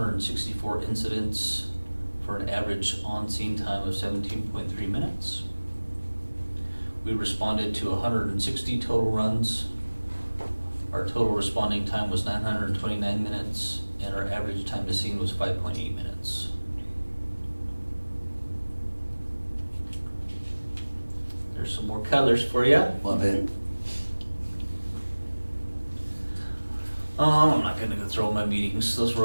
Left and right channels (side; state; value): both; inverted; correlation -1.00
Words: incidents for an average on-scene time of 17.3 minutes. We responded to 160 total runs. Our total responding time was 929 minutes, and our average time to scene was 5.8 minutes. There's some more colors for you. Love it. I'm not gonna go through all my meetings. Those were